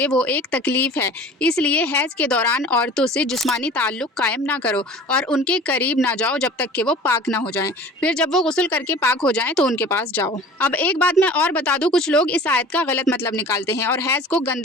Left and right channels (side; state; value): both; normal; correlation 0.43